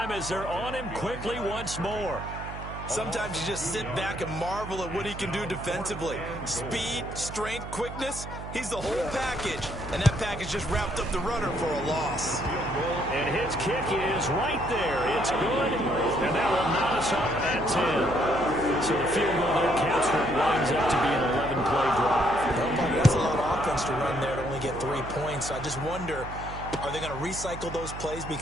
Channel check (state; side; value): noise; right; hum, 10 dB below the sound